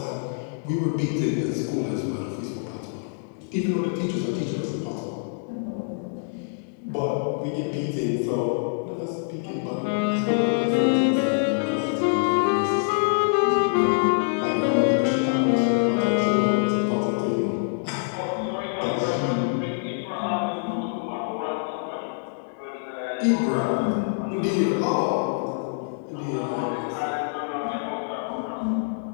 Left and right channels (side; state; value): right; silent; digital silence